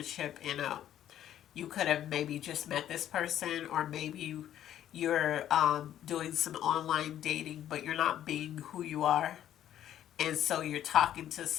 you could have maybe just met this person, or maybe you're doing some online dating, but you're not being who you are. And so you're talking to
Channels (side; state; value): right; quieter; 11.3 dB